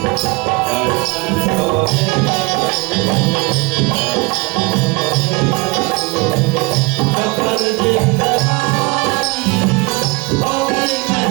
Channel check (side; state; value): left; quieter; 26.7 dB